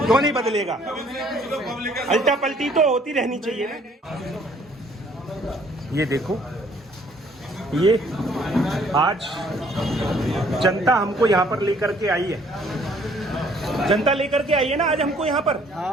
नहीं बदलेगा? अल्टा पलटी तो होती रहनी चाहिए ना। ये देखो, ये आज जनता हमको यहाँ पर लेकर के आई है। जनता लेकर के आई है ना आज हमको यहाँ पर।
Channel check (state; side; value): normal; both; correlation 0.61